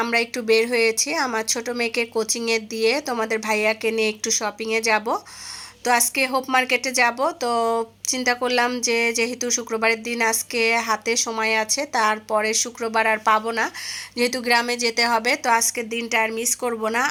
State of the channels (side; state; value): both; identical; correlation 1.00